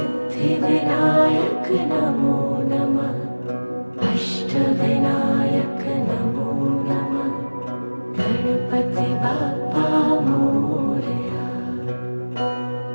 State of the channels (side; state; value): both; inverted; correlation -1.00